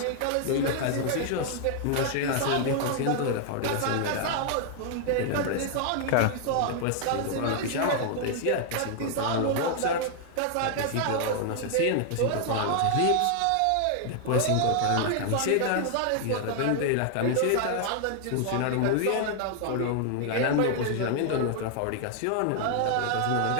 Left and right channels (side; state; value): both; different; correlation 0.00